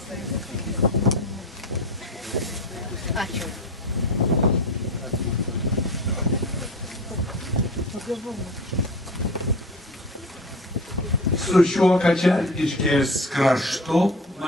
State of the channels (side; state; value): both; normal; correlation 0.32